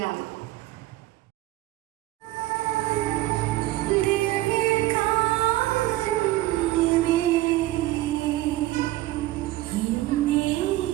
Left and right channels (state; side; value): quieter; left; 16.7 dB